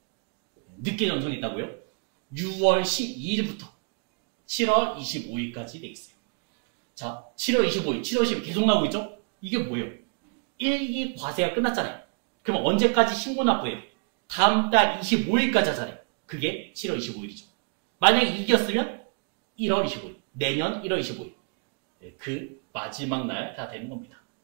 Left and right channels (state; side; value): quieter; left; 36.7 dB